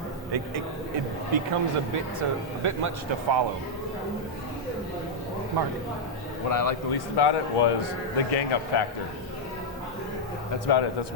It becomes a bit much to follow. Mark. What I liked the least about it was the gang up factor. That's about it. That's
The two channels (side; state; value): both; normal; correlation -0.03